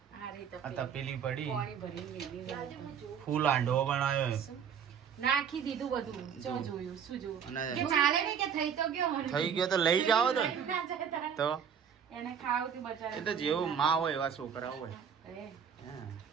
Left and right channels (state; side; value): quieter; left; 7.7 dB